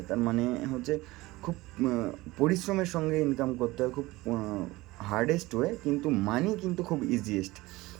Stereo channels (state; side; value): quieter; left; 19.9 dB